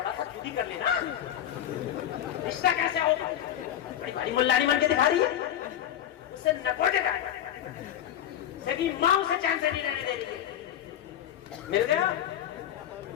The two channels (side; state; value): right; quieter; 11.0 dB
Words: सा खुद ही कर लेना, रिश्ता कैसे होगा? बड़ी भारी मुल्लानी बन के दिखा रही है, उससे नकोटे सभी माँ उसे चैन से नहीं रहने दे रही है। मिल गया?